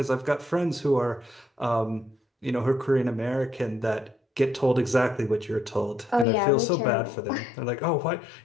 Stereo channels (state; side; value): drops out; right; at 6.2 s